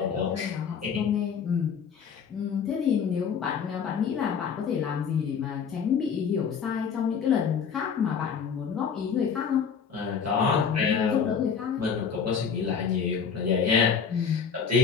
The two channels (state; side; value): quieter; right; 6.7 dB